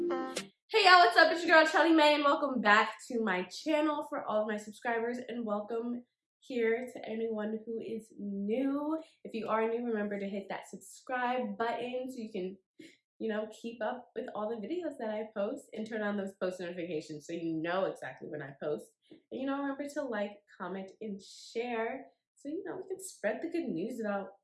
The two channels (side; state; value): both; identical; correlation 1.00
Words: y'all, what's up? It's your girl Shelly May and welcome back to my channel for all of my subscribers, and welcome here to anyone who is new. If you are new, remember to hit that subscribe button so you can, keep up with all the videos that I post, and turn on those post notifications so you know exactly when I post. And remember to like, comment, and share so we can spread the good news about